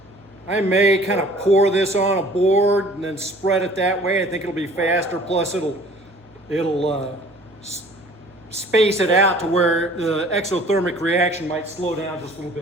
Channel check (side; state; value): right; noise; hum, 29 dB below the sound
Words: I may kind of pour this on a board and then spread it that way. I think it'll be faster. Plus it'll space it out to where the exothermic reaction might slow down just a little